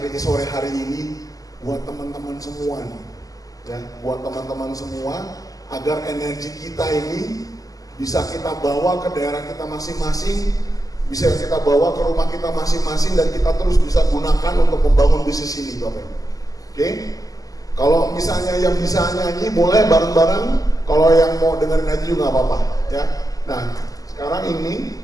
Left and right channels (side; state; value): right; late; 0.17 ms